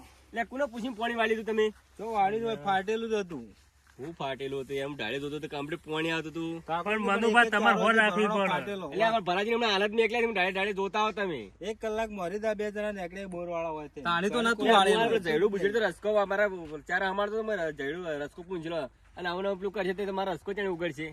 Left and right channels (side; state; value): both; identical; correlation 1.00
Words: લે કોને પૂછીને પાણી વાળી દીધું તમે તો વાળી હોય ફાટેલું જ હતું હું ફાટેલું હતું એમ ઢાળે ધોતો તો કમ્પ્લીટ પાણી આવતું હતું પણ મનુભાઈ તમારે હોર રાખવી પડે ફાટેલો. એટલે અમાર ભરાજી હમણાં હાલત ની એકલા તમે ઢાળે ઢાળે ધોતા હો તમે એક કલાક મરી દા બે જણા નીકળે બોર વાળા હોય તે તાણી તો નતું લે, વાળેલું અમારે જયડું બુજડું તો રસકો અમારા ચાર અમારે તો જયડું રસકો પૂંજલો અને આવું પેલું કરશે તો તમારા રસકો ત્યાં ઉગડશે